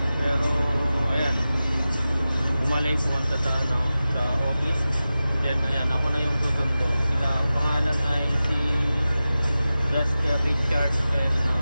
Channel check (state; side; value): inverted; both; correlation -0.94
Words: Pero ayan, umalay pumunta sa sa office. Then ayan, ako na yung susundo. Sila, ang pangalan ay si Jasper, Richard, and